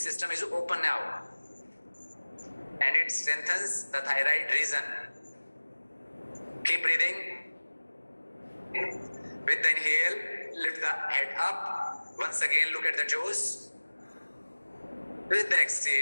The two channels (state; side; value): inverted; both; correlation -1.00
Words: is open now. And it strengthens the thyroid region. Keep breathing. With the inhale, lift the head up. Once again, look at the toes. With the